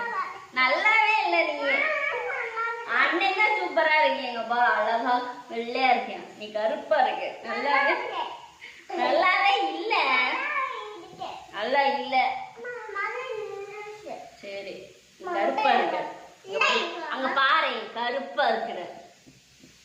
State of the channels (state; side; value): identical; both; correlation 1.00